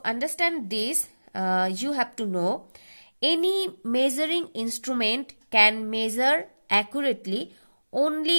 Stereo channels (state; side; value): inverted; both; correlation -1.00